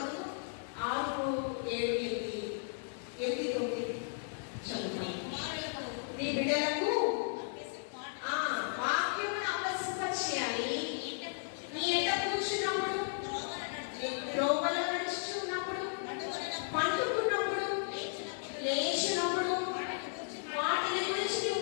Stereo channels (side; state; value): right; silent; 54 dB below the other